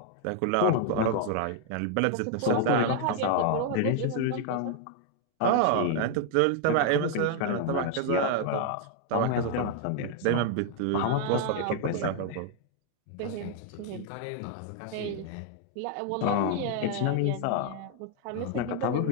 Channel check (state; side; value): different; both; correlation 0.00